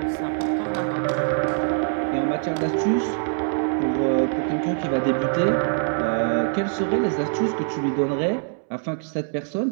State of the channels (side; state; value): left; silent; 63 dB below the other